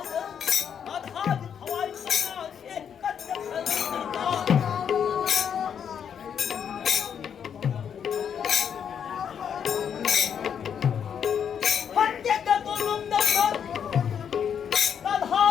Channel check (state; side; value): quieter; right; 8.0 dB